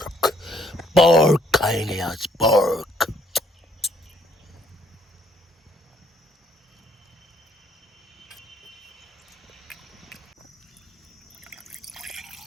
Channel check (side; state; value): both; normal; correlation 0.67